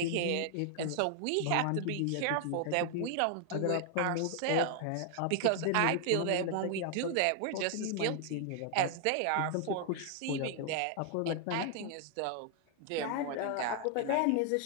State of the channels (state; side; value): different; both; correlation 0.00